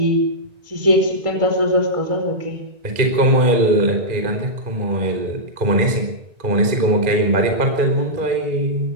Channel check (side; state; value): left; late; 2.4 ms